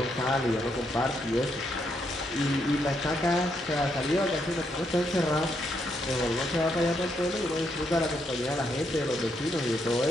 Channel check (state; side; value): normal; both; correlation 0.77